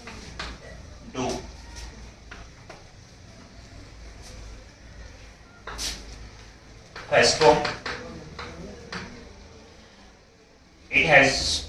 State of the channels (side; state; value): both; identical; correlation 1.00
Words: do. First form, it has